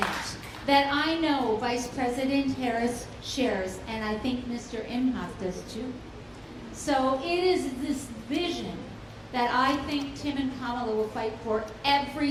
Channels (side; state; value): both; identical; correlation 1.00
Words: that I know Vice President Harris shares, and I think Mr. Emhoff does too. So it is this vision that I think Tim and Kamala will fight for every